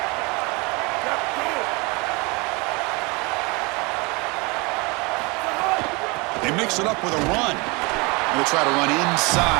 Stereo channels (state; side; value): quieter; left; 27.6 dB